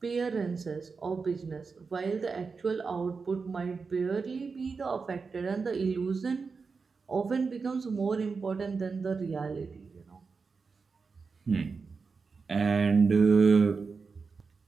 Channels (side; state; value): left; quieter; 4.8 dB